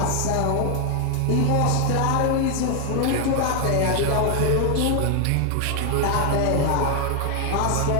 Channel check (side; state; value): both; different; correlation 0.01